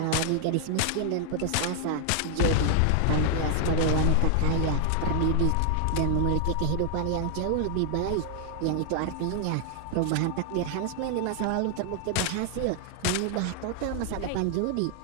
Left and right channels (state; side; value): different; both; correlation 0.00